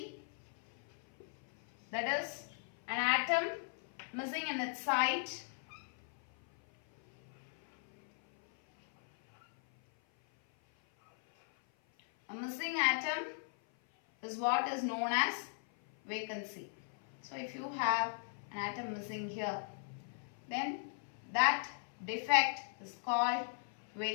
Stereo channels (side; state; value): right; silent; 53 dB below the other